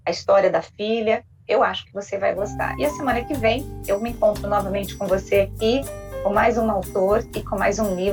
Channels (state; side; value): identical; both; correlation 1.00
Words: a história da filha. Eu acho que você vai gostar. E a semana que vem eu me encontro novamente com você aqui, com mais um autor e com mais um